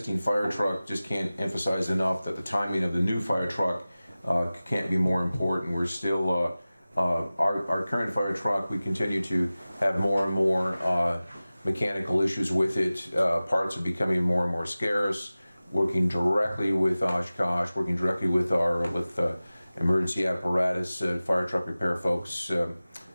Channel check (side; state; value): both; inverted; correlation -0.97